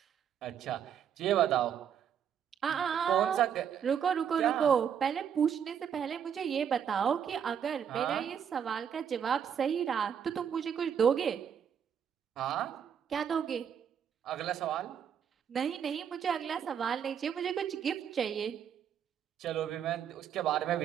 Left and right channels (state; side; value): quieter; left; 8.3 dB